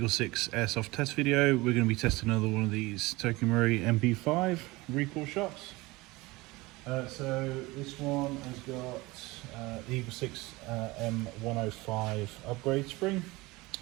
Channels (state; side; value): quieter; left; 21.8 dB